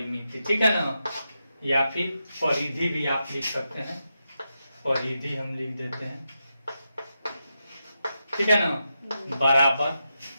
ठीक है ना, या फिर परिधि भी आप लिख सकते हैं, परिधि हम लिख देते हैं, ठीक है ना, बराबर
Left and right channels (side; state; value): both; inverted; correlation -0.87